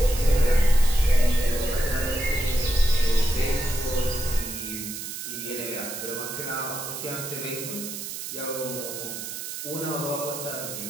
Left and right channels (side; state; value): right; noise; hiss, 7 dB below the sound